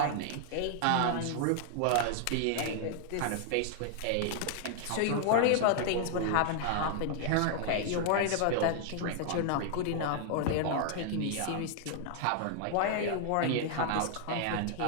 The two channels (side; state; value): both; different; correlation 0.00